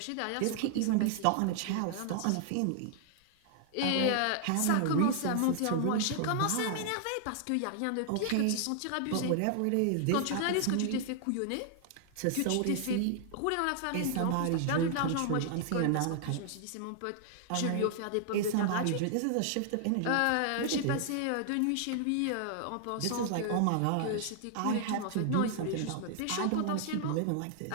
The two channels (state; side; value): different; both; correlation 0.00